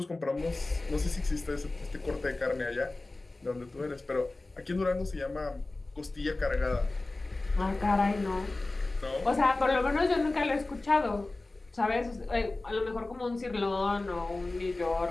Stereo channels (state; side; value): quieter; right; 3.1 dB